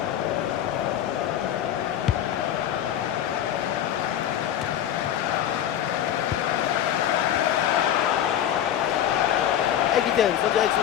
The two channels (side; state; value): right; quieter; 10.7 dB